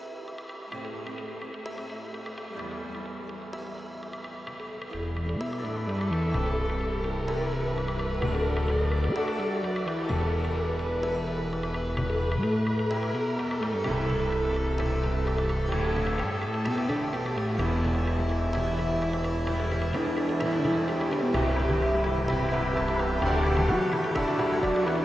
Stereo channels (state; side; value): normal; both; correlation 0.93